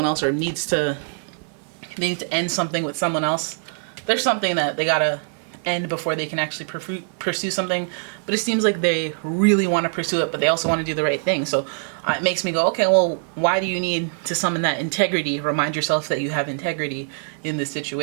else, or they need to end something with someone else. There's something that they gotta end before they can actually pursue something. But it seems like they really want to pursue it, but they also want to do the right thing. So it makes me go, okay, well, why do you need to summon that integrity? Remind yourself that you have integrity in this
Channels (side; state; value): left; silent; 57 dB below the other